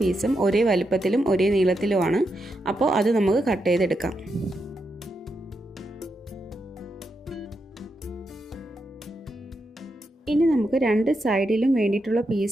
പീസും ഒരേ വലിപ്പത്തിലും ഒരേ നീളത്തിലുമാണ്. അപ്പോൾ അത് നമുക്ക് കട്ട് ചെയ്തെടുക്കാം. ഇനി നമുക്ക് രണ്ട് സൈഡിലും വേണ്ടിയിട്ടുള്ള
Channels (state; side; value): normal; both; correlation 0.84